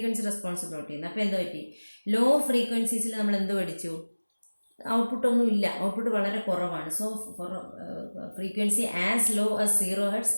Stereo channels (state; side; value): inverted; both; correlation -1.00